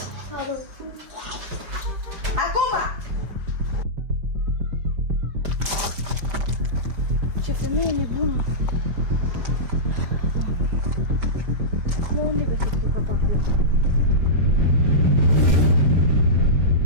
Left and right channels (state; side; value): late; left; 5.1 ms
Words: Acum! Ce femeie nebună!